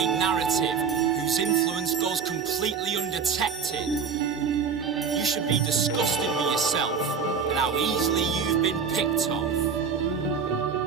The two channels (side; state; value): left; quieter; 6.2 dB